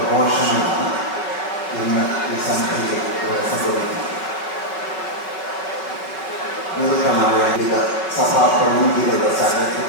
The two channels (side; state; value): right; late; 5.3 ms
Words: ഇന്ന് ഈ സന്ധ്യയിൽ ഇവിടെ സംഭവിക്കുന്നത്. നിവൃത്തമായ വിവിധ സഭാ പ്രതിനിധികളുടെ സാന്നിധ്യം,